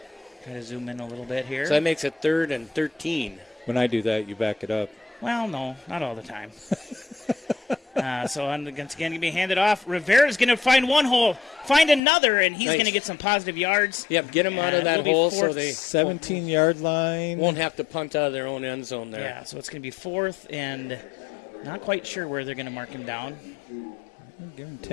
try to zoom in a little bit here. So that makes it 3rd and 13. When I do that, you back it up. Well, no, not all the time. So once again, going to be handed off. Rivera's going to find one hole, find another, and he's going to get some positive yards. Yep, get him out of that hole so they 17-yard line. Won't have to punt out of their own end zone there. Yeah, so it's going to be 4th, and not quite sure where they're going to mark him down. Give him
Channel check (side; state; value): right; drops out; at 12.0 s